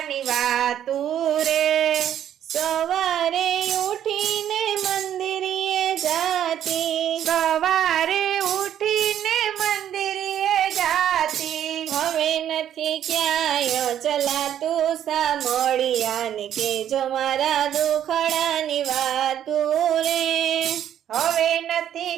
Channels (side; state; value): left; quieter; 10.5 dB